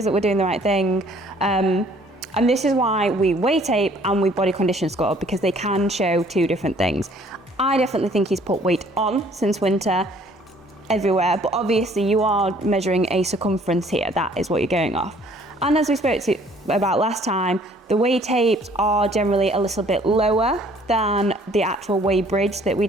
that we're doing the right thing. And this is why we weight tape and we body condition score, because they can show two different things. I definitely think he's put weight on since winter everywhere, but obviously you are measuring a circumference here. That is what you're going off. And as we spoke about last time, the weigh tapes are generally a little bit lower than the actual weigh bridge that we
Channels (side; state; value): both; normal; correlation 0.58